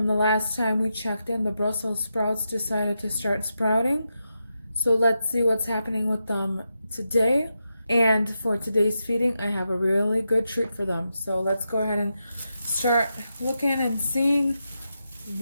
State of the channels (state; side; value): inverted; both; correlation -0.87